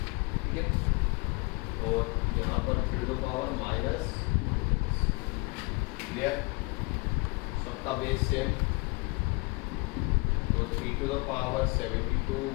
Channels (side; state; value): right; quieter; 27.6 dB